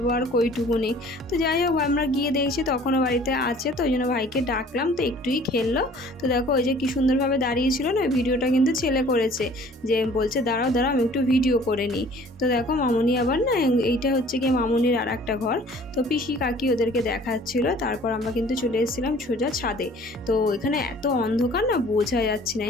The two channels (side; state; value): both; normal; correlation 0.51